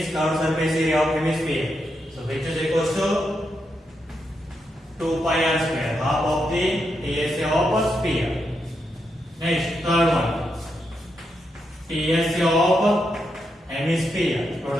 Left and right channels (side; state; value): both; normal; correlation 0.83